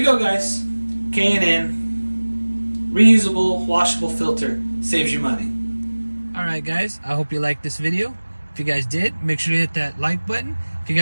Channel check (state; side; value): inverted; both; correlation -1.00